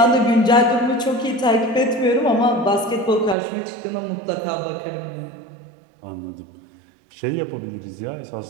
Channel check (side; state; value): left; drops out; at 3.4 s